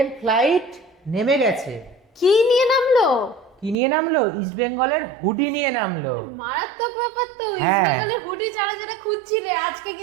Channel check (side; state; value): left; drops out; at 3.8 s